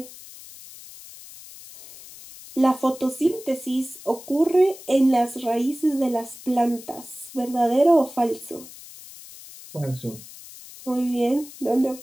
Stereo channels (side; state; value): left; noise; hiss, 17 dB below the sound